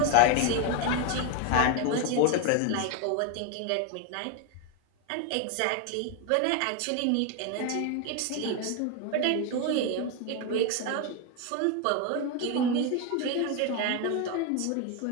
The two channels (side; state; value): both; different; correlation 0.01